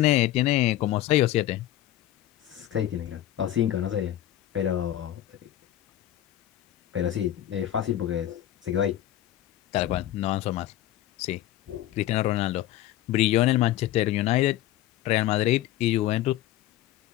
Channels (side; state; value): right; quieter; 13.4 dB